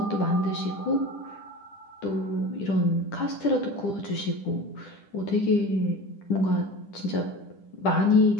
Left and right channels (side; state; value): right; late; 10 ms